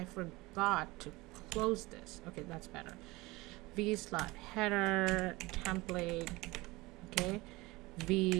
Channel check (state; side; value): quieter; left; 21.7 dB